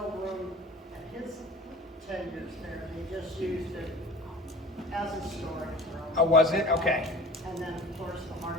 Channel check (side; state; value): both; normal; correlation 0.41